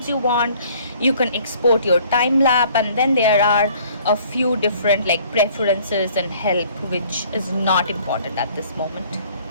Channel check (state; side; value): inverted; both; correlation -0.56